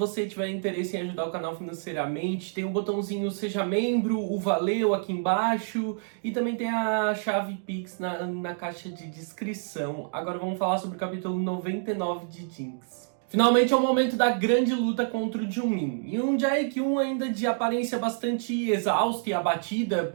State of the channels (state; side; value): silent; left; digital silence